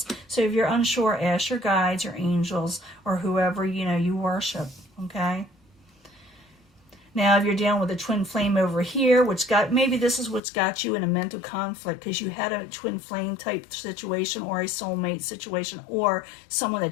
So if you're unsure, ask your guides, your angels, or whoever, you know, you worship, okay? Now, if you're dealing with a twin flame over here, maybe this is what's got you in a mental conflict because you had a twin flame type situation or a soulmate situation or someone that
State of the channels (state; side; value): drops out; right; at 10.4 s